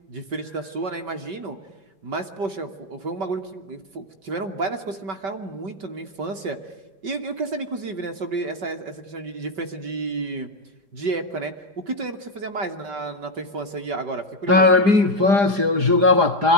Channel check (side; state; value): left; late; 5.2 ms